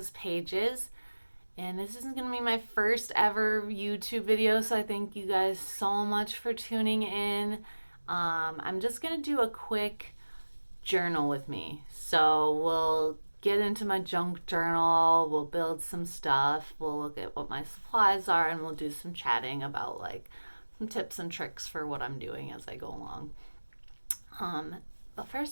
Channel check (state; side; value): inverted; both; correlation -1.00